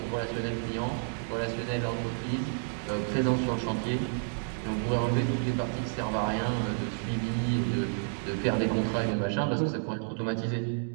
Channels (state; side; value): silent; left; 58 dB below the other